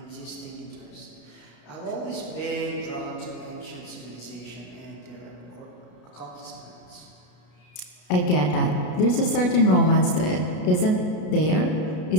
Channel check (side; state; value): right; late; 33 ms